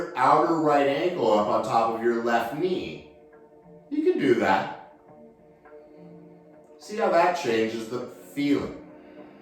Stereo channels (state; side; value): identical; both; correlation 1.00